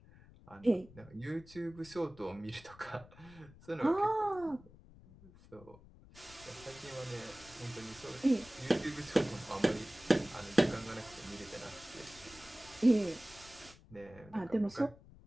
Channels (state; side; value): noise; left; rumble, 21 dB below the sound